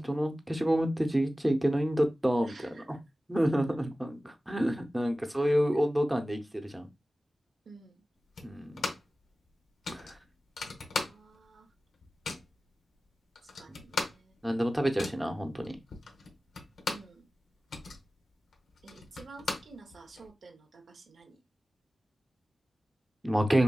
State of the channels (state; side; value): normal; both; correlation 0.96